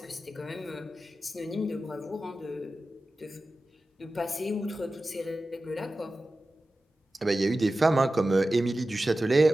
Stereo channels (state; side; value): normal; both; correlation 0.94